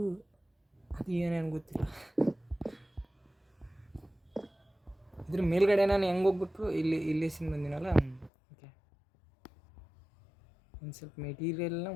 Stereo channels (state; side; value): drops out; right; at 8.3 s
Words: ಏನೇನು ಗೊತ್ತಿಲ್ಲ. ಇದ್ರ ಮೇಲ್ಗಡೆ ನಾನು ಹೆಂಗೆ ಹೋಗ್ಬೇಕು, ಇಲ್ಲಿ ಸಿಂಗ್ ಬಂದಿನಲ್ಲ. ಓಕೆ ಒಂದು ಸ್ವಲ್ಪ ಮೆಟೀರಿಯಲ್ನ